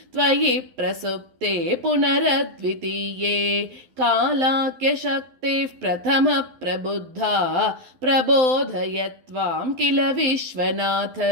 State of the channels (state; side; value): late; left; 12 ms